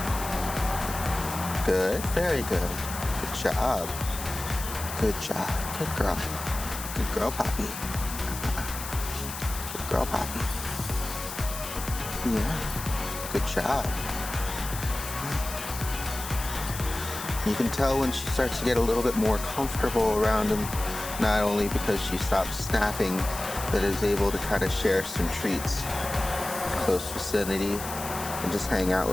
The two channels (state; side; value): noise; left; hiss, 9 dB below the sound